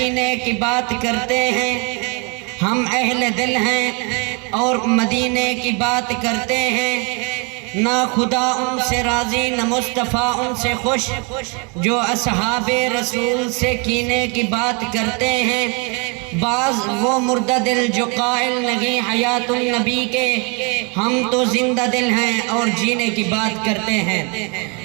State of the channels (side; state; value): left; quieter; 33.0 dB